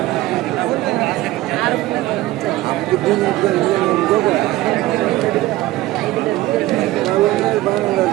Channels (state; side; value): quieter; left; 16.9 dB